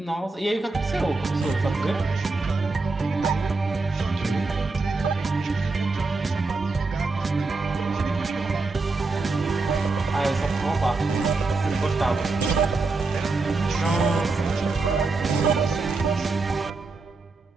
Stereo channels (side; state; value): left; quieter; 3.7 dB